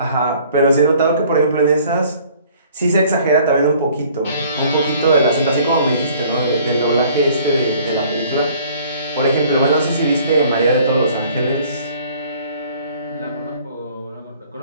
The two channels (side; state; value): both; inverted; correlation -0.55